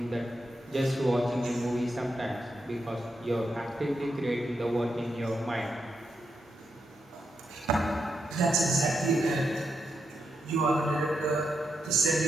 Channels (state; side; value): normal; both; correlation 0.83